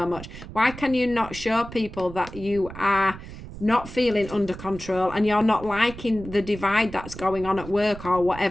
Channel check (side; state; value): right; noise; rumble, 13 dB below the sound